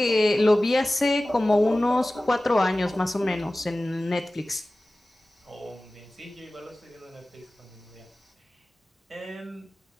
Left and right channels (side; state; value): both; normal; correlation 0.97